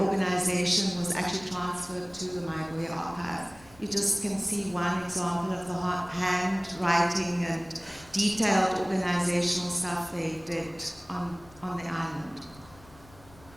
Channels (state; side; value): noise; left; rumble, 24 dB below the sound